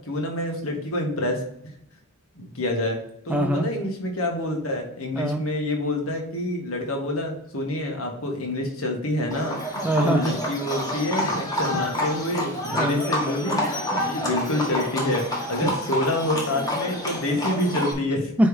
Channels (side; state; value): both; normal; correlation 0.27